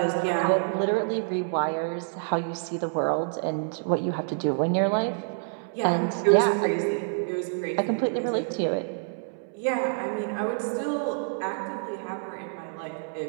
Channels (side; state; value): left; silent; 60 dB below the other